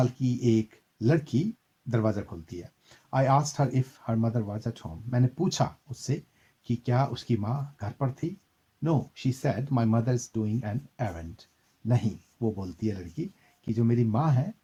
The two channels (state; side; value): identical; both; correlation 1.00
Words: की एक लड़की दरवाज़ा खोलती है. I asked her if her mother was at home. मैंने पूछा उससे कि क्या उसकी माँ घर पर थी. No, she said my mother is doing an errand. नहीं, वो बोलती है लड़की कि जो मेरी माँ है